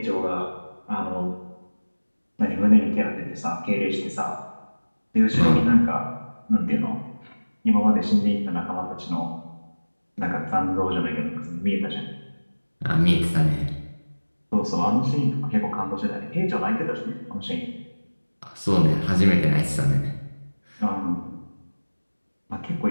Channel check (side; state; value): both; inverted; correlation -1.00